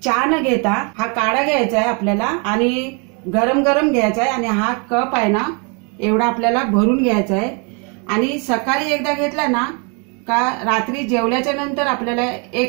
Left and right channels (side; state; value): left; quieter; 34.9 dB